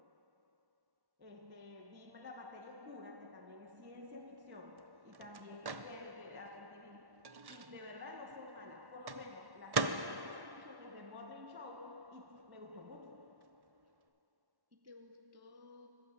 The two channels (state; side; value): late; left; 1.1 ms